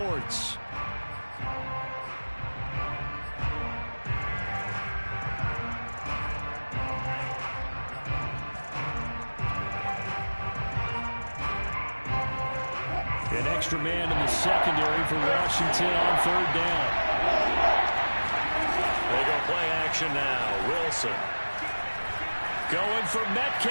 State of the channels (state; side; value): inverted; both; correlation -1.00